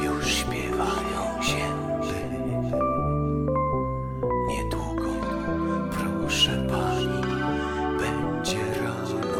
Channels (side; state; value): both; identical; correlation 1.00